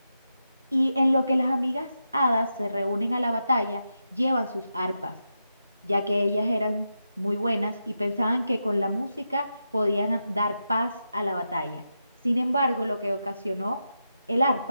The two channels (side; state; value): both; inverted; correlation -0.87